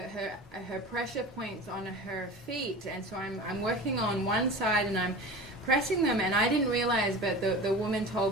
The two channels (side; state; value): both; normal; correlation 0.34